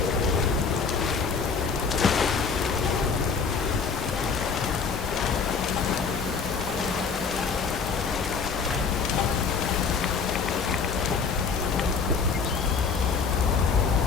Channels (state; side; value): quieter; right; 5.4 dB